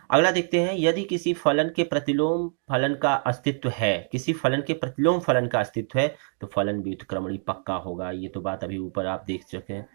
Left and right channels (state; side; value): silent; left; 56 dB below the other